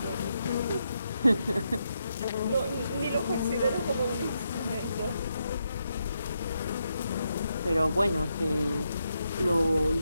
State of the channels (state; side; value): inverted; both; correlation -0.82